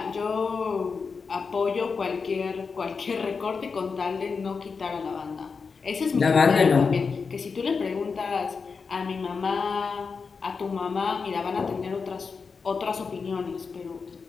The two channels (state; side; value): quieter; right; 5.1 dB